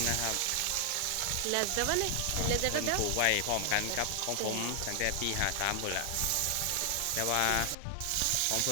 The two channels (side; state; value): both; different; correlation 0.00